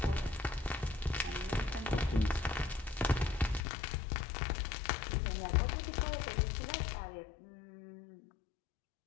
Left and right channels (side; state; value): right; drops out; at 3.6 s